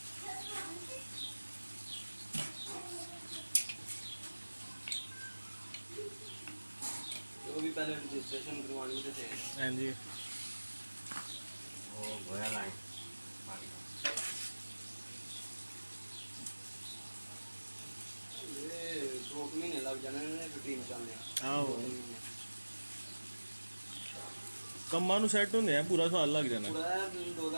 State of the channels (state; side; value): inverted; both; correlation -1.00